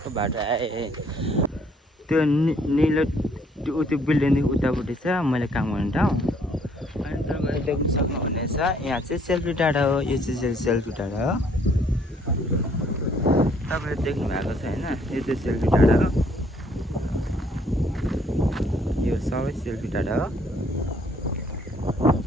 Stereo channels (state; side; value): normal; both; correlation 0.64